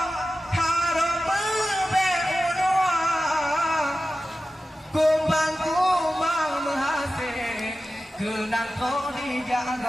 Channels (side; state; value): both; normal; correlation 0.94